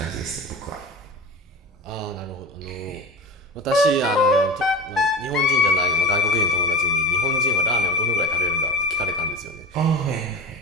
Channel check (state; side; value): normal; both; correlation 0.30